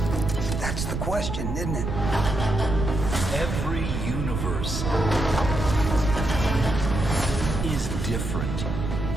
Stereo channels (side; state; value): right; noise; rumble, 3 dB below the sound